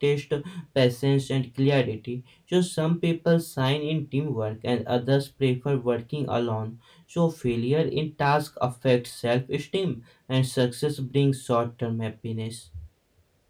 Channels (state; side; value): identical; both; correlation 1.00